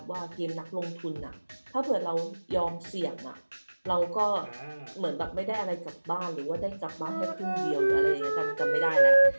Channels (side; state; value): both; inverted; correlation -1.00